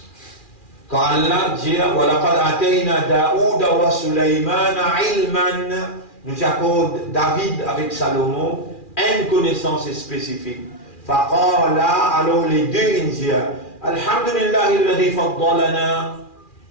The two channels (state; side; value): late; right; 2.4 ms